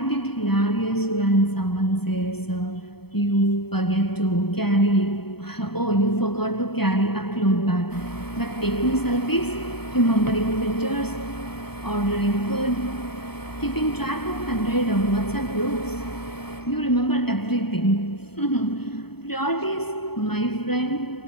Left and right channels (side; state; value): right; late; 0.97 ms